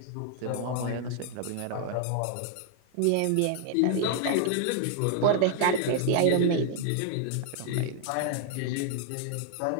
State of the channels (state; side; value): different; both; correlation 0.00